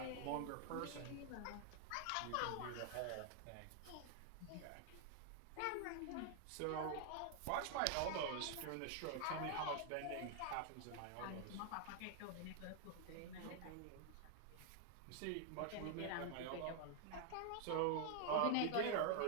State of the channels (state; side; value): different; both; correlation 0.00